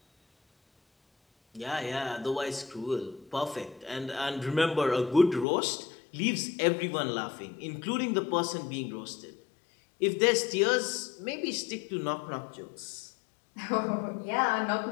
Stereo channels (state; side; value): drops out; right; at 5.5 s